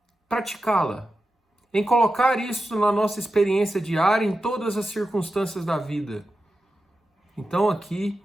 praticá-la? Em colocar isso na nossa experiência diária, em todas as circunstâncias da vida? Então aqui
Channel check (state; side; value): normal; both; correlation 0.91